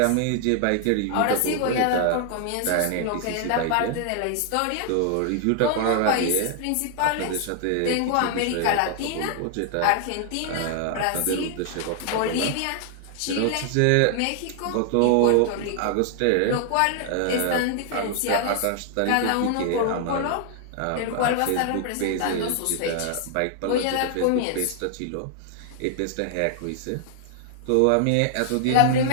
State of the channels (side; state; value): both; different; correlation 0.00